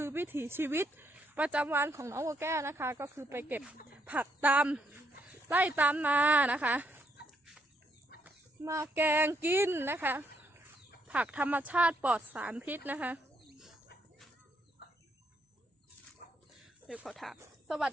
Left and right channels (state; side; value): normal; both; correlation 0.75